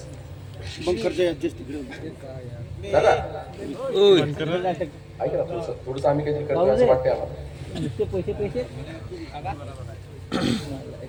दादा ऐका ना थोडंसं आम्ही काहीतरी करतो असं वाटतंय आम्हाला.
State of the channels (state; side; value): identical; both; correlation 1.00